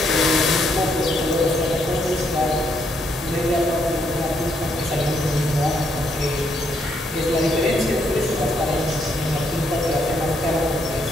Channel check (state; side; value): normal; both; correlation 0.74